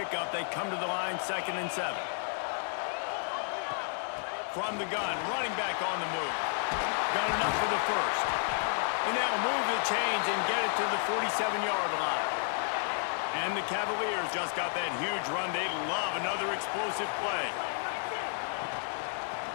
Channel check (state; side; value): silent; right; 57 dB below the other